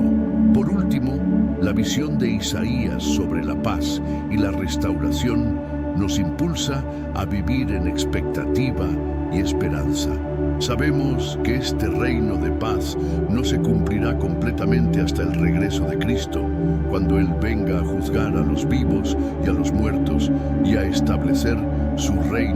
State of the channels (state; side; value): identical; both; correlation 1.00